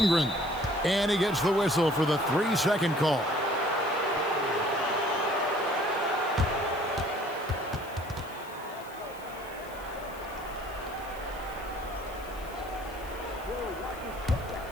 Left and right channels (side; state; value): left; noise; hiss, 21 dB below the sound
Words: And he gets the whistle for the 3-second call.